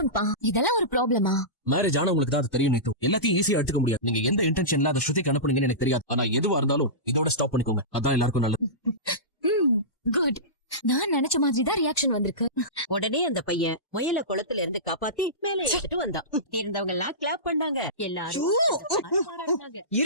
பா, இதெல்லாம் ஒரு ப்ராப்ளமா? மேரேஜ் ஆனா உங்களுக்கு தான் அது தெரியும் நீத்து. எல்லாத்தையும் ஈஸியா எடுத்துக்க முடியாது. நீங்க எந்த இன்டென்ஷன்ல அதை ஸ்ருதிக்கு அனுப்புனீங்கன்னு எனக்கு தெரியாது. ஆனா எதுவா இருந்தாலும் இதோட ஸ்டாப் பண்ணிக்கோங்க, அதான் எல்லாருக்கும் நல்லது. குட். நான் நினைச்ச மாதிரி தான் ரியாக்ஷன் வந்திருக்கு. உடனே அந்த பையன் முயல குளத்துல இருந்து காப்பாத்தி மேல எடுத்துட்டு வந்தான். இருந்தவங்க எல்லாம் கிளாப் பண்ணாங்க. எல்லாரும் பாராட்டினாங்க.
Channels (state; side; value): late; right; 1.1 ms